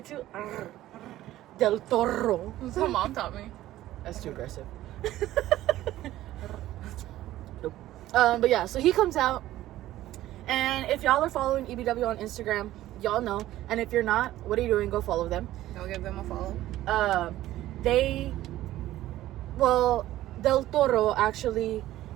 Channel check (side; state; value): left; quieter; 14.7 dB